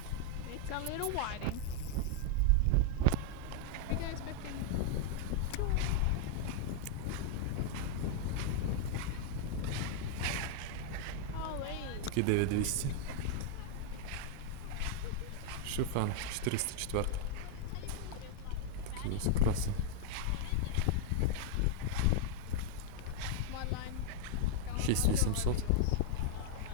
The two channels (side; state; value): both; different; correlation 0.00